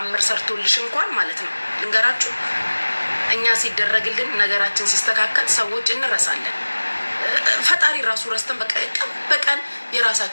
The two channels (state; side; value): inverted; both; correlation -1.00